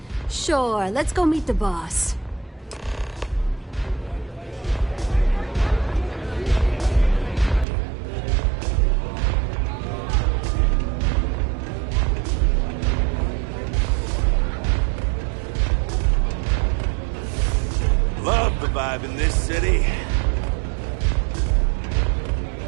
Sure, let's go meet the boss. Love the vibe in this city.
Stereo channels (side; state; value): left; drops out; at 7.7 s